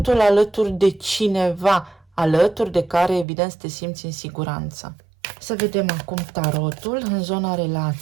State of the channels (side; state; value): left; drops out; at 3.2 s